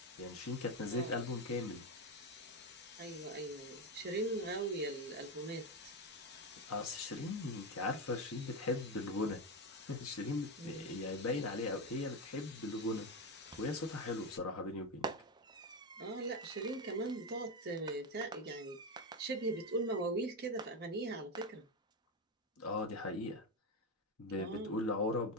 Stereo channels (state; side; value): normal; both; correlation 0.13